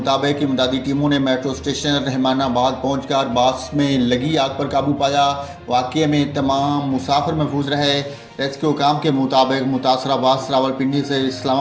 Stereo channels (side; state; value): both; identical; correlation 1.00